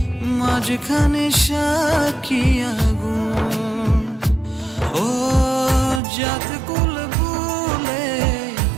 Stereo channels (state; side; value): drops out; left; at 6.0 s